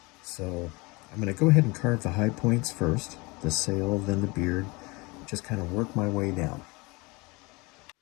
So I'm going to go ahead and carve the high points first, the sail, then the beard, just kind of work my way down.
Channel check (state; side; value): quieter; right; 25.4 dB